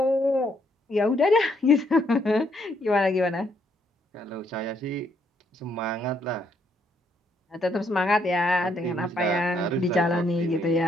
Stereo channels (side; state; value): both; normal; correlation 0.72